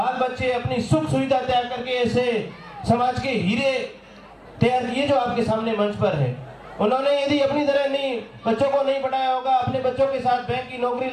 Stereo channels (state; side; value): identical; both; correlation 1.00